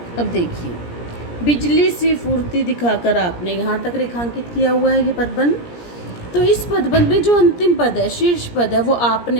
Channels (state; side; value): late; right; 17 ms